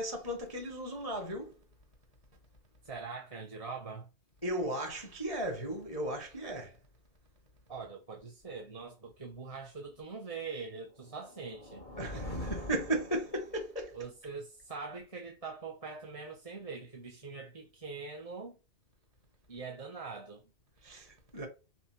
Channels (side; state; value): right; late; 1.8 ms